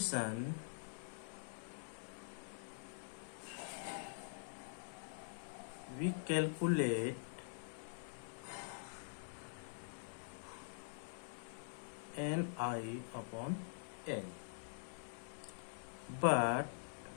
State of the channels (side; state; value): right; silent; digital silence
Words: we calculate Ni upon L. But